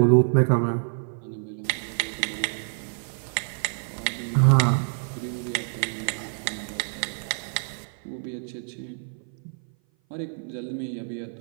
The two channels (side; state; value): left; silent; 56 dB below the other